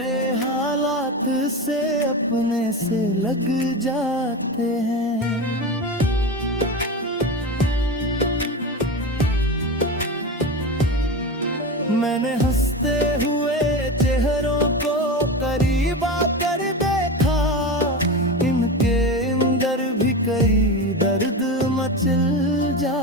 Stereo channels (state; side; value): normal; both; correlation 0.24